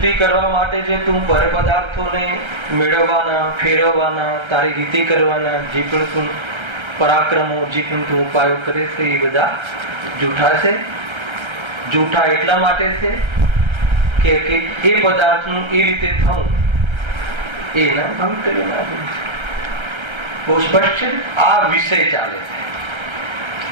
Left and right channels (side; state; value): left; late; 1.3 ms